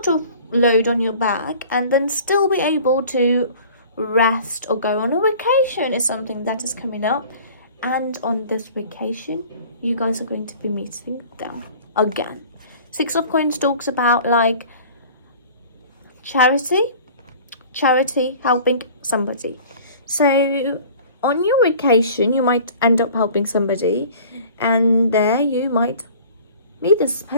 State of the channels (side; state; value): both; inverted; correlation -0.46